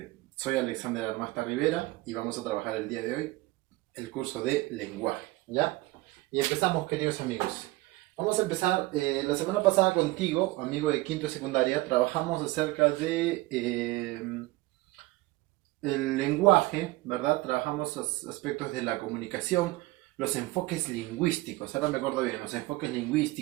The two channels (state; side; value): quieter; left; 20.2 dB